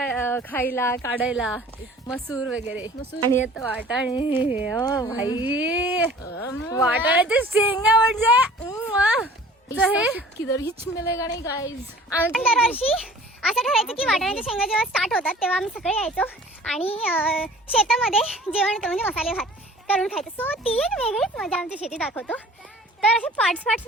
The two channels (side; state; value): both; normal; correlation 0.48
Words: खायला काढायला, मसूर वगैरे. आणि आता वाटाणे. ओ भाई, वाटाण्याच्या शेंगा म्हणजे हे किधर हिच मिलेगा नाही गाइस. दरवर्षी असं ठरायचं की वाटाण्याच्या शेंगा जेव्हा स्टार्ट होतात तेव्हा आम्ही सगळे यायचो आणि शेतामध्ये जेवण होतं, म्हणजे मसाले भात करून खायचं. सो ती एक वेगळीच मजा आमची शेती दाखवतो. तर असे पार्ट्स